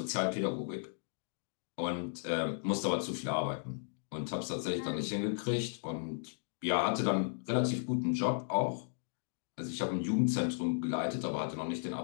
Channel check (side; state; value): right; silent; digital silence